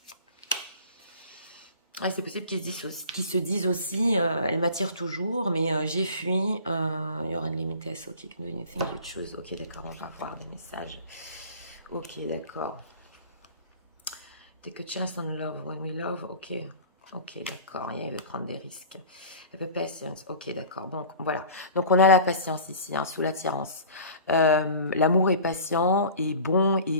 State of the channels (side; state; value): both; inverted; correlation -0.40